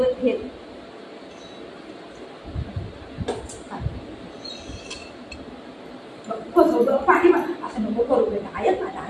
घेत पाणी असं नको करू बेटा. ऐक माझा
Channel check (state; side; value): identical; both; correlation 1.00